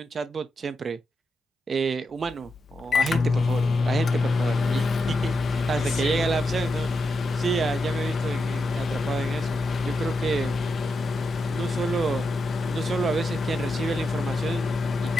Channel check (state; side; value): normal; both; correlation 0.86